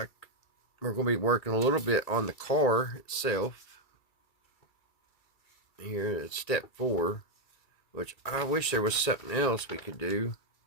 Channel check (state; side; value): late; right; 2.3 ms